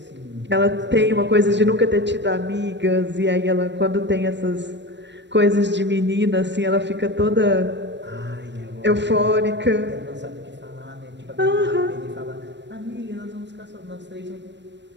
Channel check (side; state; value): left; late; 0.52 ms